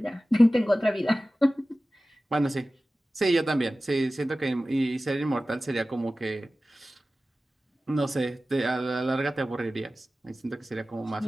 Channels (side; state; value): both; normal; correlation 0.96